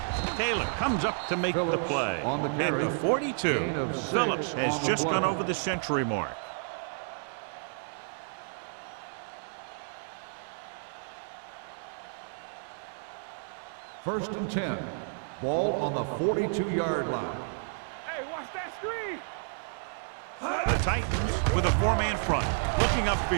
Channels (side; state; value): left; silent; digital silence